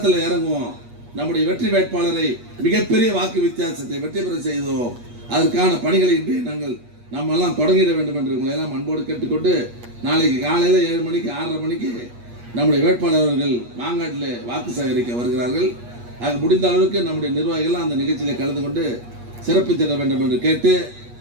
இறங்குவோம். நம்முடைய வெற்றி வேட்பாளரை மிகப்பெரிய வாக்கு வித்தியாசத்தை வெற்றி பெற செய்தோம். அதற்கான பணிகளை இன்று நம்ம எல்லாம் தொடங்கிட வேண்டும் என்று உங்களை எல்லாம் அன்போடு கேட்டுக்கொண்டு, நாளைக்கு காலையில் 7 மணிக்கு 6:30 மணிக்கு நம்முடைய வேட்பாளர்கள் மாங்காட்டில் வாக்கு சேகரிக்க வருகிறார்கள். ஆக முடிந்த அளவுக்கு நம்முடைய நிர்வாகிகள் அந்த நிகழ்ச்சியில் கலந்து கொண்டு சிறப்பித்திட வேண்டும் என்று கேட்டு,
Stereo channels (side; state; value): left; late; 8.4 ms